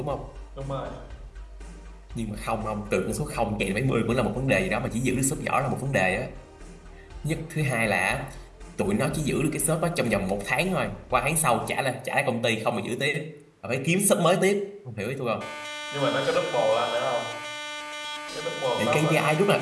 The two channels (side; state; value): both; identical; correlation 1.00